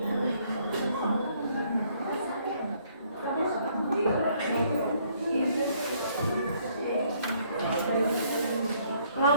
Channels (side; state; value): both; inverted; correlation -0.66